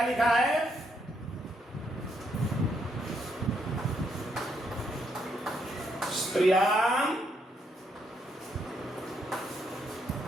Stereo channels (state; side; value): normal; both; correlation 0.76